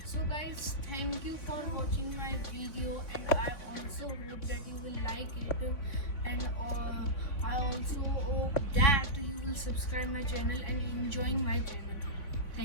So guys, thank you for watching my video, and I also hope that you will like it, and I also hope that you will subscribe my channel and enjoy my channel.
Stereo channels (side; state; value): right; late; 3.5 ms